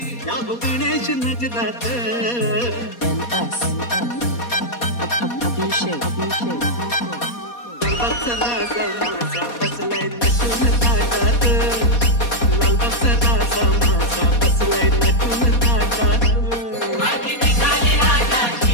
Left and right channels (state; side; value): late; right; 4.2 ms